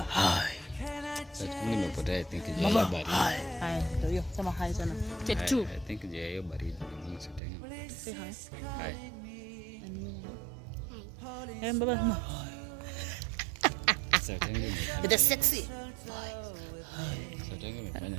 hi. I think Baba, hi. Hi. Sema hi sana. Take 2. I think hiyo baridi. Say hi. Hi. Hey, Baba, hi. The sexy.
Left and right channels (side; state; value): left; drops out; at 7.4 s